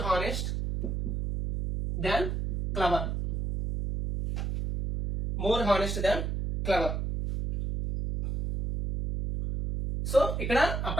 than clever. So ఇక్కడ ఆ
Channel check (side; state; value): right; noise; hum, 2 dB below the sound